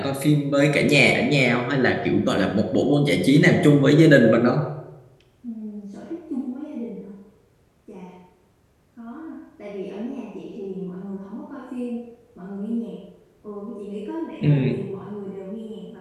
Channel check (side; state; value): both; identical; correlation 1.00